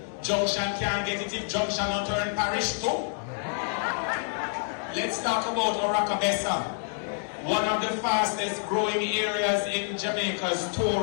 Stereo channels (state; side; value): silent; right; 60 dB below the other